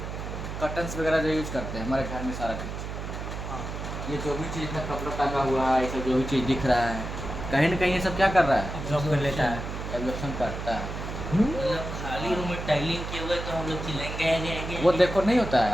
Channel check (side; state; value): right; noise; hum, 7 dB below the sound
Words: कर्टन्स वगैरह जो यूज़ करते हैं हमारे घर में, सारा चीज़, हाँ ये जो भी चीज़ में कपड़ा टंगा हुआ है, ये सब जो भी चीज़ दिख रहा है, कहीं ना कहीं ये सब क्या कर रहा है? ऑब्जॉर्व कर लेता है। एब्जॉर्प्शन करता है। मतलब खाली रूम में टाइलिंग किए हुए तो हम लोग चिल्लाएंगे वो देखो नहीं होता है,